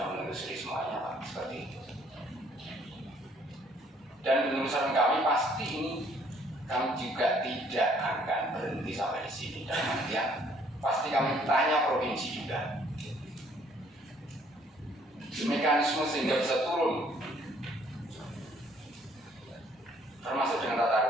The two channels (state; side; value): normal; both; correlation 0.62